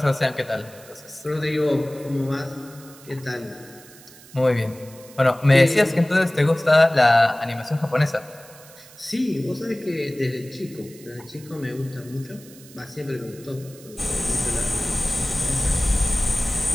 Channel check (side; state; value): right; noise; hiss, 21 dB below the sound